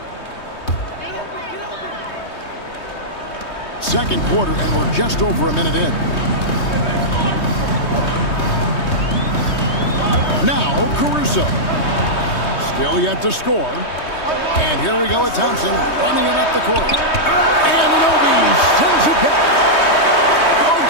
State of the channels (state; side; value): late; right; 3.2 ms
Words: Second quarter, and we're just over a minute in. Now, Caruso. Still yet to score. And here we go with Thompson running it up the court. Anunoby sends it back. OG